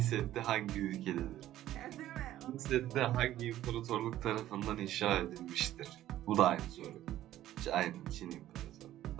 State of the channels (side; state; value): left; quieter; 13.4 dB